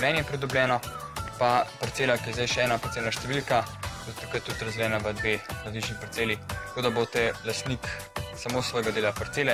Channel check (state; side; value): identical; both; correlation 1.00